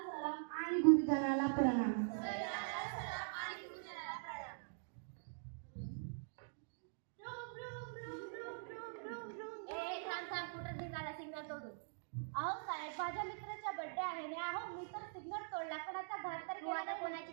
सलाम आणि गुरुजनाला प्रणाम. अहो साहेब, माझ्या मित्राचा बर्थडे आहे ना. अहो मी तर सिग्नल तोडला, कोणाचा घात तर आता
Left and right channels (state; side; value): silent; left; digital silence